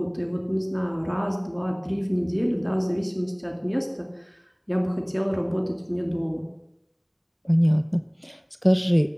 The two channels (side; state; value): both; identical; correlation 1.00